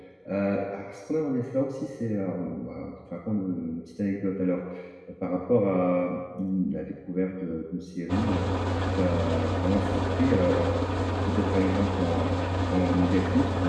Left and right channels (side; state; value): both; identical; correlation 1.00